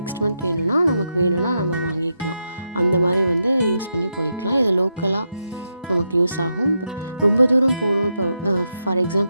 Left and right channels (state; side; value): inverted; both; correlation -0.84